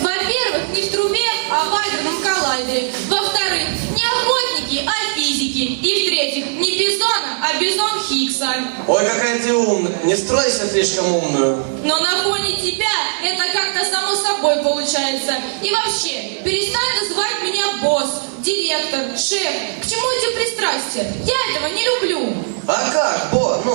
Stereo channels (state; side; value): silent; left; digital silence